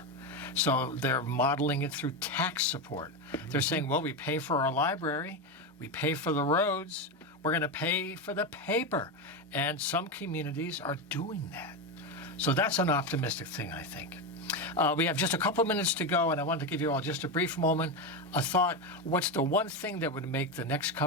So they're modeling it through tax support. They're saying, well, we pay for our library, we pay for the roads, we're going to pay for the paper. And some communities are doing that. So that's an optimistic thing, I think. We have just a couple minutes to go, and I wanted to give you all just a brief moment, a thought. What's the one thing that would make the next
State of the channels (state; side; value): normal; both; correlation 0.13